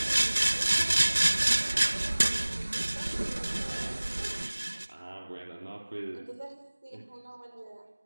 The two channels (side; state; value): both; inverted; correlation -1.00